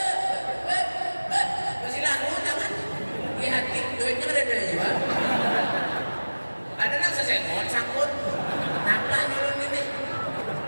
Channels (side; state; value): both; inverted; correlation -1.00